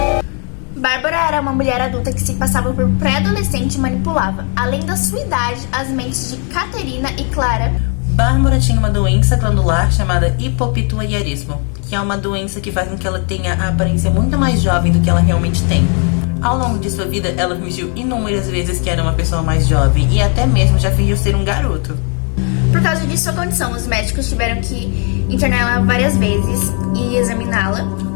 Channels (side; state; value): right; quieter; 39.3 dB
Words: Bárbara era uma mulher adulta que se passava por pré-adolescente e manipulava, além da sua idade, as mentes de Caterina e Clara. Bárbara tinha uma doença glandular chamada hipopituitarismo, que é uma doença que faz com que ela tenha a aparência muito mais jovem do que ela realmente tem. Ao longo de sua vida, ela fingiu inúmeras vezes que era uma pessoa mais jovem e até mesmo já fingiu ser um garoto. Por causa de sua condição, os médicos tiveram que internar ela várias vezes e examiná-la.